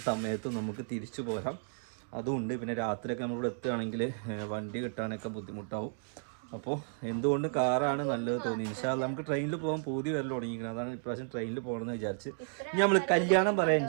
സമയത്തും നമുക്ക് തിരിച്ചു പോരാം, അതുമുണ്ട്. പിന്നെ രാത്രിയൊക്കെ നമ്മളിവിടെ എത്തുകയാണെങ്കിൽ വണ്ടി കിട്ടാനൊക്കെ ബുദ്ധിമുട്ടാവും. അപ്പോൾ എന്തുകൊണ്ട് കാറാണ് നല്ലത് തോന്നി. ഇൻഷാ അല്ലാഹ് നമുക്ക് ട്രെയിനിൽ പോകാൻ പൂതി വരൽ തുടങ്ങിയിരിക്കുന്നത്. അതാണ് ഇപ്രാവശ്യം ട്രെയിനിൽ പോകണമെന്ന് വിചാരിച്ച്. ഇനി നമ്മൾ കല്യാണം പറയാം,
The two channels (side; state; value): left; silent; digital silence